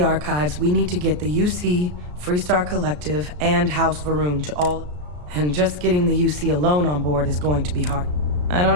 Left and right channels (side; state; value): left; late; 34 ms